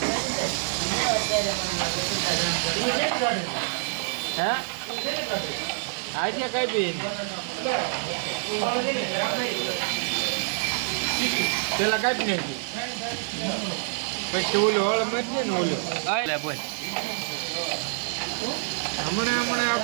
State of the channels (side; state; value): left; silent; 60 dB below the other